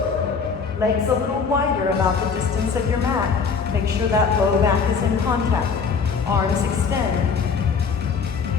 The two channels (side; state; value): right; quieter; 5.6 dB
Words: Legs a little wider, about the distance of your mat. Make sure that low back is in contact. Arms extend.